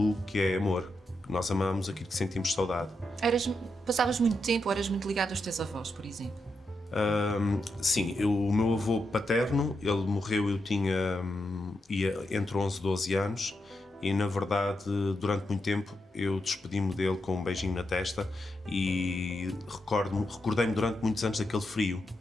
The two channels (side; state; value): both; normal; correlation 0.85